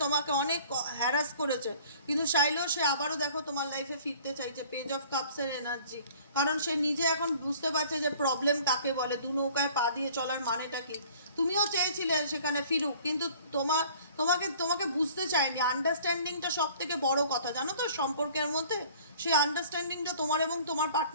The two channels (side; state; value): both; inverted; correlation -0.52